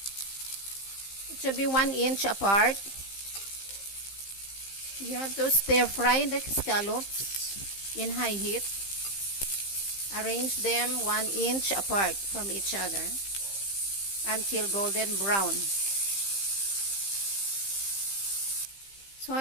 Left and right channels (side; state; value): right; late; 15 ms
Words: It should be 1 inch apart. You have to stir fry the scallops in high heat. Arrange them 1 inch apart from each other until golden brown. So